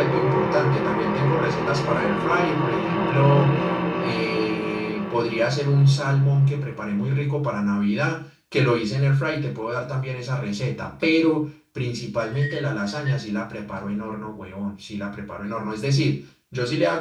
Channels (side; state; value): both; identical; correlation 1.00